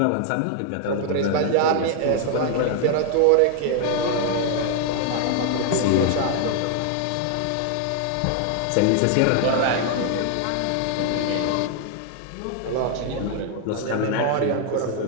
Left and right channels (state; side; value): different; both; correlation 0.00